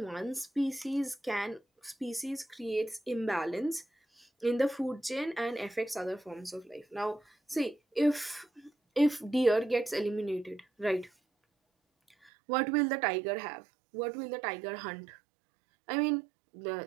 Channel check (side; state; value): left; drops out; at 12.3 s